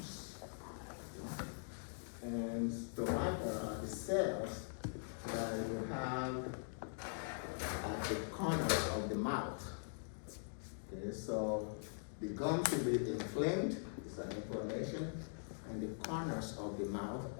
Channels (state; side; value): silent; right; digital silence